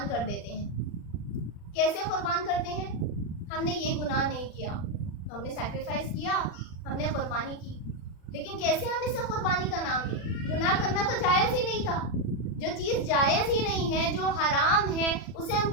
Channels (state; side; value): late; right; 40 ms